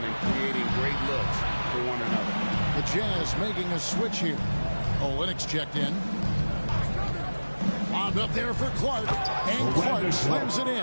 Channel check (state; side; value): inverted; both; correlation -1.00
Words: and creating great looks for one another. The Jazz making a switch here. Olynyk checked in. Bombed up there for Clark. And Clark slams it